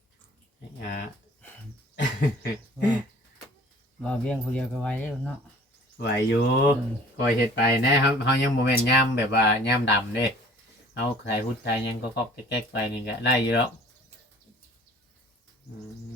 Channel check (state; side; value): normal; both; correlation 0.50